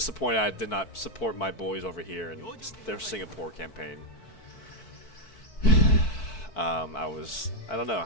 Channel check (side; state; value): right; late; 4.6 ms